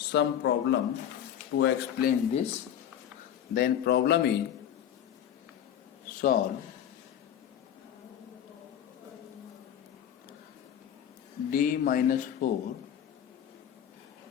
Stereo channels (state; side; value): quieter; right; 9.9 dB